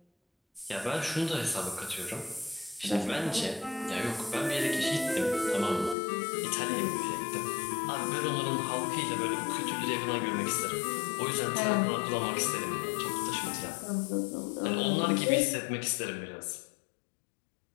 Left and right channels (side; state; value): right; drops out; at 6.0 s